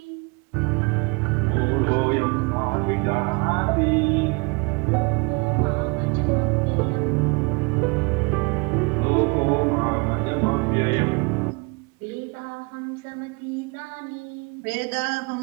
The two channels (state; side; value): quieter; left; 30.1 dB